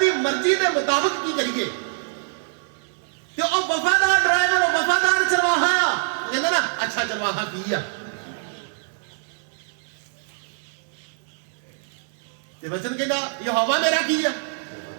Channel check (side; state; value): left; silent; 63 dB below the other